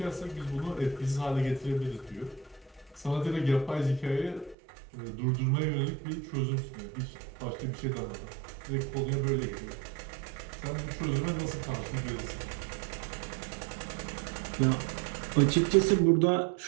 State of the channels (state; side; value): drops out; left; at 4.5 s